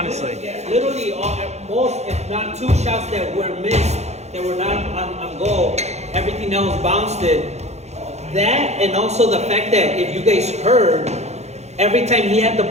Literally, at most, if not 2 shots that were missed, that were not on goal, everything else bounced it. That, and also the fact that if you guys heard, every time he had the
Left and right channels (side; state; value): left; late; 0.32 ms